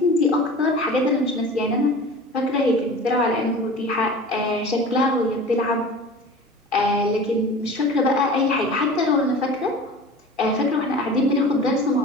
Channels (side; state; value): both; normal; correlation 0.38